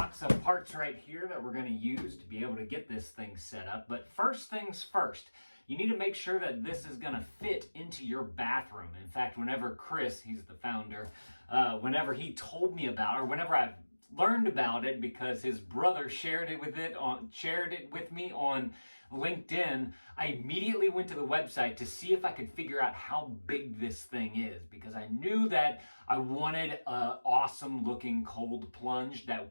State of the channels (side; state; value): both; inverted; correlation -1.00